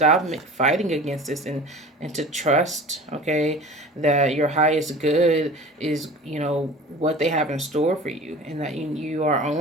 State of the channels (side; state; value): both; normal; correlation 0.39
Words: fighting against this and to trust, okay, that your highest good is, what they have in store for you, and that you are